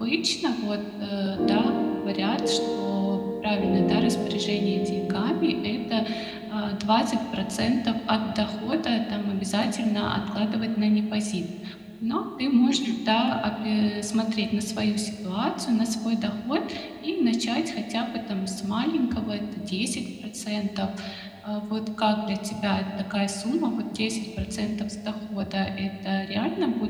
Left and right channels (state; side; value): identical; both; correlation 1.00